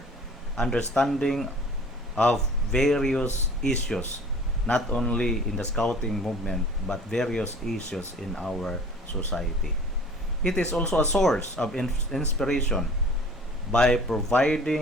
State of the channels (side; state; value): both; normal; correlation 0.47